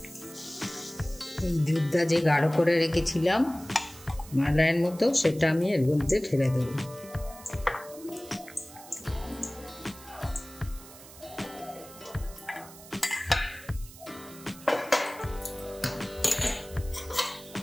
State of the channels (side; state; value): right; noise; hiss, 18 dB below the sound